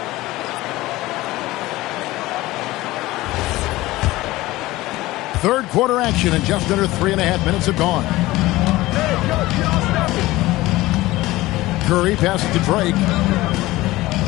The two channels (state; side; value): quieter; right; 18.3 dB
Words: Third quarter action and just under 3.5 minutes have gone. Curry passes to Drake.